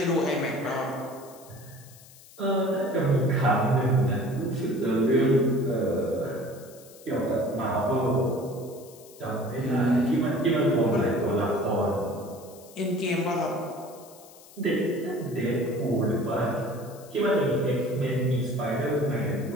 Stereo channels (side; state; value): left; noise; hiss, 22 dB below the sound